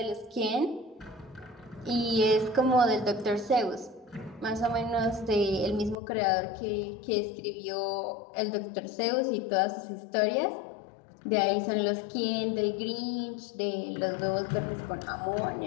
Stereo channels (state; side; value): drops out; right; at 6.0 s